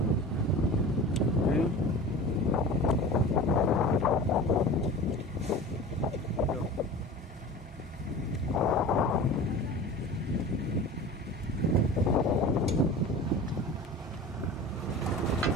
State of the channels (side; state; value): both; normal; correlation 0.36